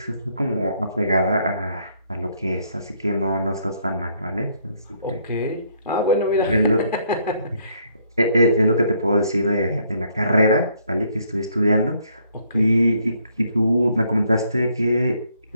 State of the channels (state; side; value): inverted; both; correlation -0.68